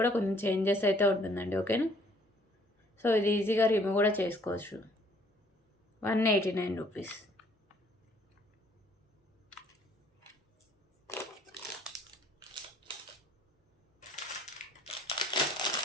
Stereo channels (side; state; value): both; normal; correlation 0.60